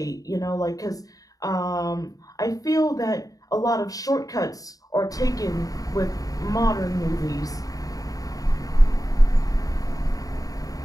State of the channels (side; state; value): right; late; 0.17 ms